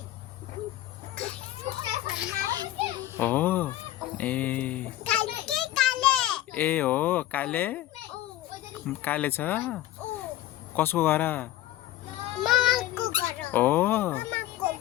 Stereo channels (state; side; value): quieter; right; 14.6 dB